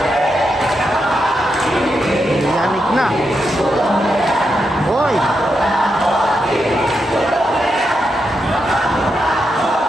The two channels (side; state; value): both; normal; correlation 0.84